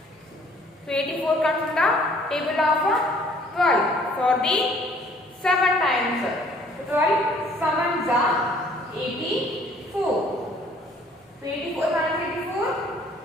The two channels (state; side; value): normal; both; correlation 0.58